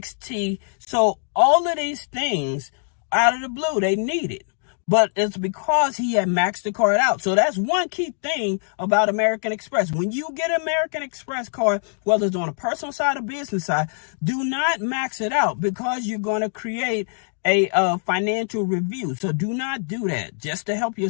So all of these things out of the blue, they needed. But it's because he had maxed the card out. So that's one key thing about American Express. When you get an American Express card, whether it's on a personal side or business side, do not max it out because you're going to create a financial review. So do not do that just to help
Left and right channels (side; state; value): right; silent; 63 dB below the other